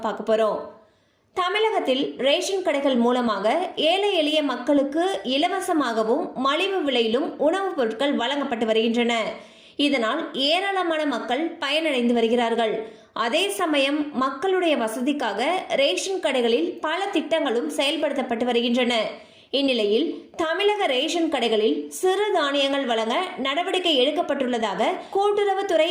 பார்க்க போகிறோம். தமிழகத்தில் ரேஷன் கடைகள் மூலமாக ஏழை எளிய மக்களுக்கு இலவசமாகவும் மலிவு விலையிலும் உணவுப் பொருட்கள் வழங்கப்பட்டு வருகின்றன. இதனால் ஏராளமான மக்கள் பயனடைந்து வருகிறார்கள். அதே சமயம் மக்களுடைய வசதிக்காக ரேஷன் கடைகளில் பல திட்டங்களும் செயல்படுத்தப்பட்டு வருகின்றன. இந்நிலையில் தமிழக ரேஷன் கடைகளில் சிறு தானியங்கள் வழங்க நடவடிக்கை எடுக்கப்பட்டுள்ளதாக கூட்டுறவுத்துறை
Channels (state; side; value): identical; both; correlation 1.00